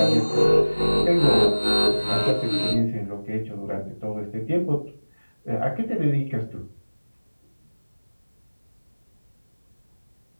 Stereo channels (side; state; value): both; inverted; correlation -1.00